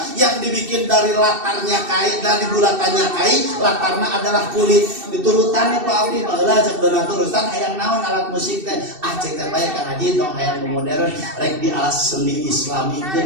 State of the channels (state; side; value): late; left; 2.7 ms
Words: yang dibikin dari latarnya kain, dari bulatannya kain, latarnya adalah kulit. Diturutannya Pak Abdi, baheula cek beunah turusan hayang naon alat musik teh. Cek teh bae ka ngaji tong hayang modern rek di alat seni Islami